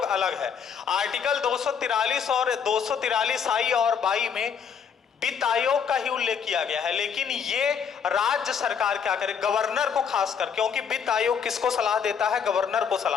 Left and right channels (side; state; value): right; quieter; 7.0 dB